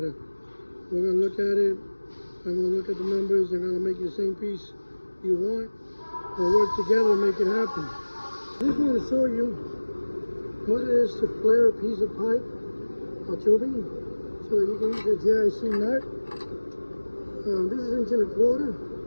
We're going to look at it, I'm going to look at the numbers, I'm going to make you the same piece you want. We'll work together to make it happen. I just want to show you what it is to flare a piece of pipe or tubing so that you can use the GIC nut. This is 1 1/4 inch.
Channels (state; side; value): inverted; both; correlation -1.00